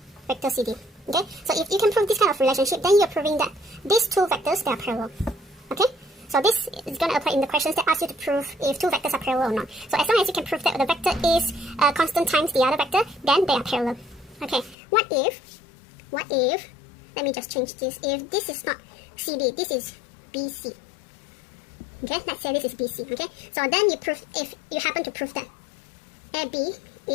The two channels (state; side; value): drops out; right; at 14.8 s